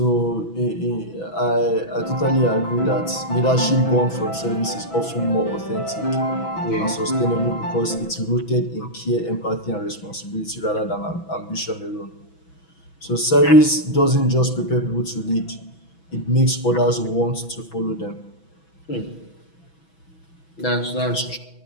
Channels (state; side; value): late; right; 6.1 ms